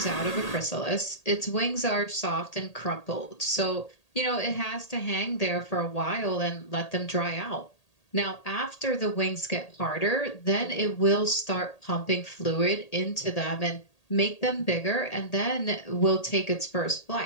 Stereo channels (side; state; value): right; late; 1.8 ms